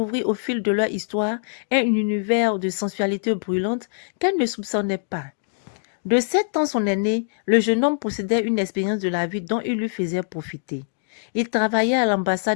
au fil de leur histoire un univers de sensualité brûlante qu'elle ne soupçonnait pas. De 7 ans son aîné, le jeune homme possédait une expérience de la vie dont il lui faisait profiter. Il travaillait à l'ambassade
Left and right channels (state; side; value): silent; right; digital silence